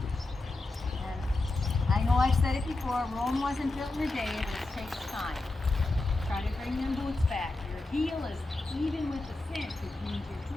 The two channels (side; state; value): right; quieter; 3.0 dB